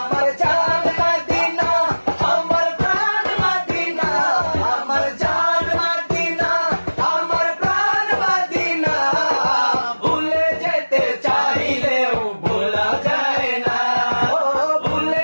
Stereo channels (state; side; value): inverted; both; correlation -1.00